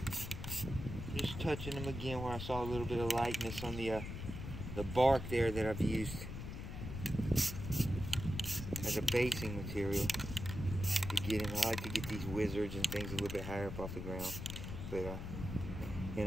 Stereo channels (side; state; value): left; noise; rumble, 7 dB below the sound